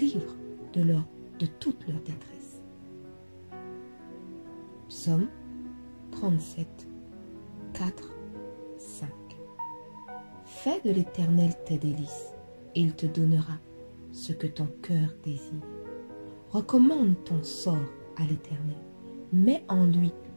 de toute leur détresse. Psaume 37, 4, 5. Fais de l'Éternel tes délices, et il te donnera ce que ton cœur désire. Recommande ton sort à l'Éternel, mets en lui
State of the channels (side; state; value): both; inverted; correlation -1.00